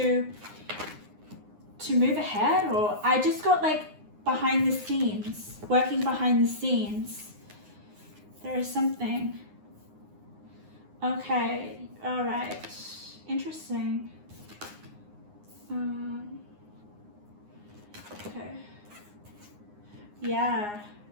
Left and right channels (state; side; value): late; left; 9.7 ms